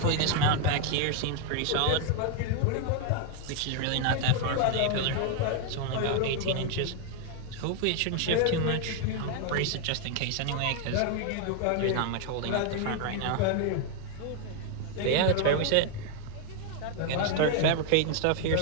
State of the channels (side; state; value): both; different; correlation 0.01